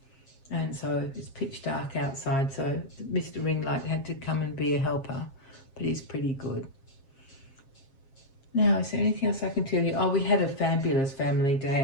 And so it's pitch dark outside, so Mr. Ringlight had to come and be a helper, but he's pretty good. Now, is there anything else I can tell you? Oh, we had a fabulous family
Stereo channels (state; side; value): late; right; 7.4 ms